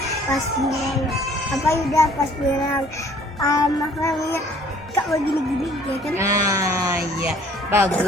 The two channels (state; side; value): normal; both; correlation 0.56